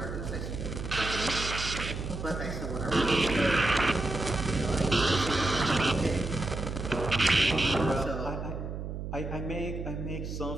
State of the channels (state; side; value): noise; right; hum, 6 dB below the sound